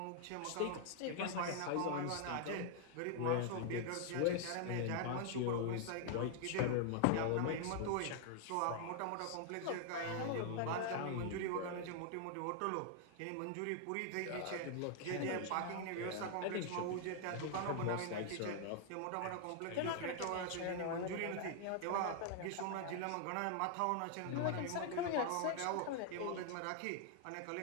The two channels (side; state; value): both; different; correlation 0.00